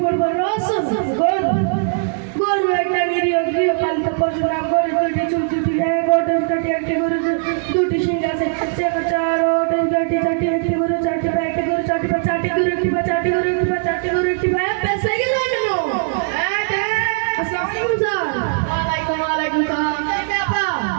রসুন গরু একটা নিরীহ গৃহপালিত পশু নাম গরু দুইটি চুল দুটি এক ওটের কাটি একটি গরু দুটি শিং আছে চার ওটের কাটি চারটি একটি গরু চারটি পা একটি গরু চারটি পা চারটি গরু একটি পা চারটি গরু একটি পা চারটি গরু একটি পা পেছে গেল কেন? আসসালামু আলাইকুম স্যার। ওয়ালাইকুম সালাম। আপা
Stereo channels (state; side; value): silent; left; 66 dB below the other